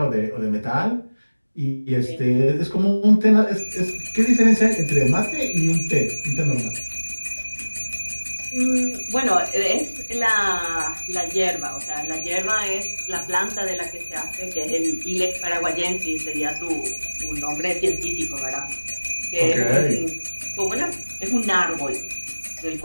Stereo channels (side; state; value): both; inverted; correlation -1.00